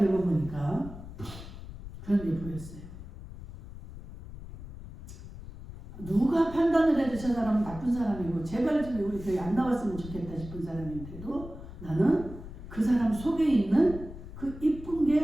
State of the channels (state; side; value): noise; left; rumble, 13 dB below the sound